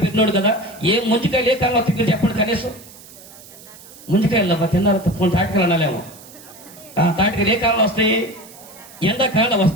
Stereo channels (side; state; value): right; noise; hiss, 20 dB below the sound